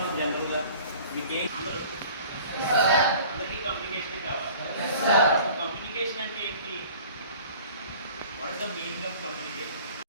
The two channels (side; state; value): both; inverted; correlation -0.46